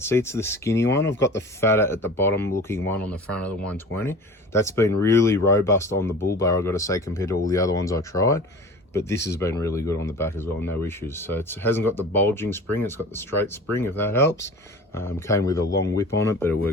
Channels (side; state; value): both; normal; correlation 0.39